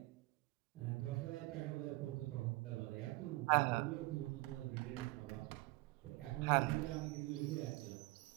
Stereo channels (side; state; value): left; quieter; 21.4 dB